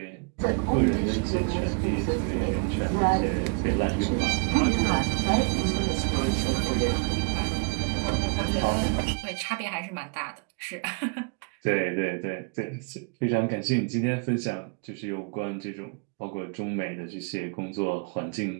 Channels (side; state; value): left; quieter; 35.1 dB